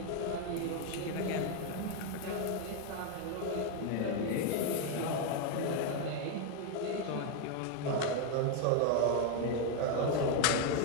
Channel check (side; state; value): both; different; correlation 0.01